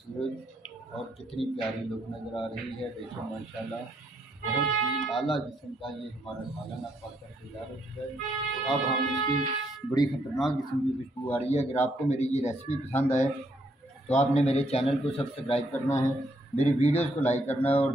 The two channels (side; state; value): both; normal; correlation 0.73